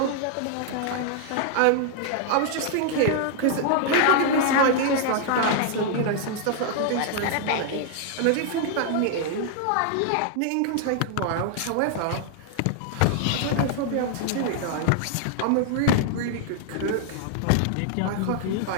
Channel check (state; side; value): different; both; correlation 0.00